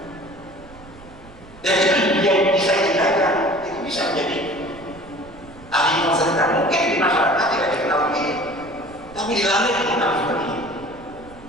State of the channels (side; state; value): right; noise; rumble, 21 dB below the sound